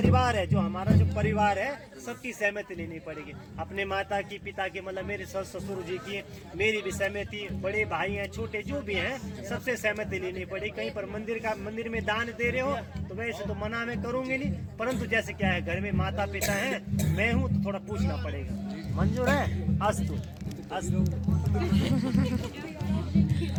है, जो हमारा जो परिवार है सबकी सहमति लेनी पड़ेगी। अपने माता की, पिता की मतलब मेरे सस ससुर जी की, मेरी भी सहमति, बड़े भाई हैं छोटे जो भी हैं सबसे सहमति लेनी पड़ेगी। कहीं पर मंदिर में दान दे रहे हो तो वैसे तो मना में करूंगे नहीं, परंतु जैसे क्या है घर में माता पिता है, मैं हूँ तो थोड़ा पूछना पड़ेगा। मंजूर है? अस्तु अस्तु।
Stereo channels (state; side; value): identical; both; correlation 1.00